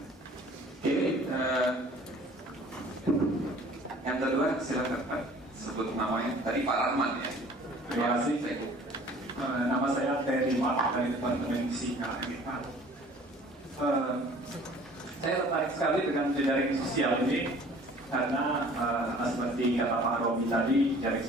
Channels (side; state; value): both; normal; correlation 0.50